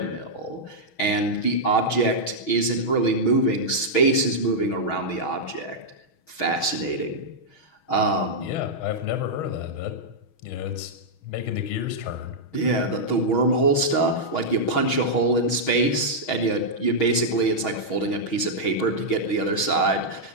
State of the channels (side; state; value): right; late; 6.3 ms